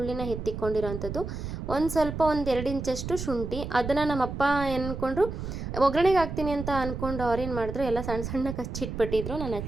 ಎತ್ತಿಕೊಂಡಿರೋಂಥದ್ದು. ಒಂದು 2 ಇಂಚಷ್ಟು ಶುಂಠಿ. ಅದನ್ನು ನಮ್ಮಪ್ಪ ಅಂದ್ಕೊಂಡ್ರು ಒಗ್ಗರಣೆಗೆ ಹಾಕ್ತೀನಿ ಅಂತ ಅಂದ್ಕೊಂಡು ಅವ್ರೇನು ಮಾಡಿದ್ರು, ಎಲ್ಲ ಸಣ್ಣ ಹಚ್ಚಿಟ್ಬಿಟ್ಟಿದ್ರು. ನಾನು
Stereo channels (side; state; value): right; noise; rumble, 6 dB below the sound